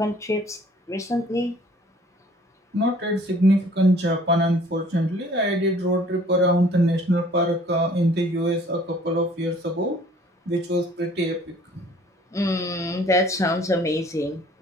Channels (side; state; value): both; normal; correlation 0.54